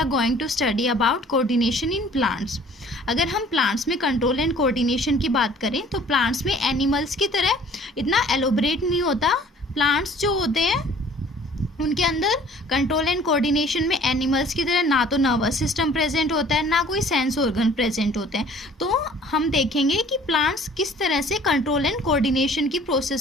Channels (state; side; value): normal; both; correlation 0.52